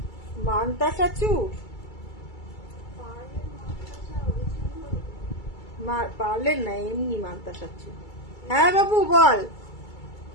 মানতাসা চূড়, পারলেন না, এমনি মানতাসা চূড়। হ্যাঁ বাবু বল,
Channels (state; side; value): late; right; 2.3 ms